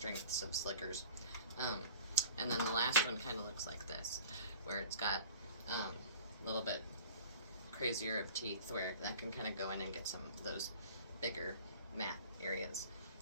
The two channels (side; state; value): both; inverted; correlation -0.43